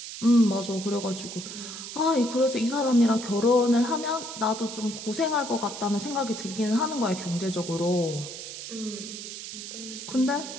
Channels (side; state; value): right; noise; hiss, 9 dB below the sound